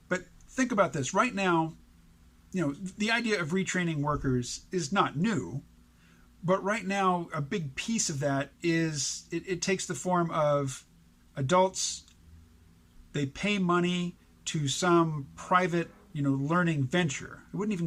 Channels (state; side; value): identical; both; correlation 1.00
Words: But think about this. Right now, the idea of retraining workers is not new. But right now, a big piece of that is it takes the form of adults. They pay money to some private, learning venture. I wouldn't